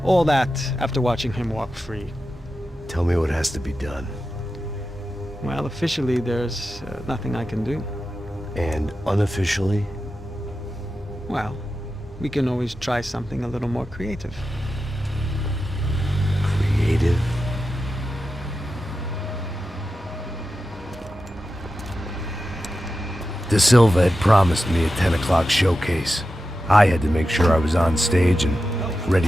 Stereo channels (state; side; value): normal; both; correlation 0.91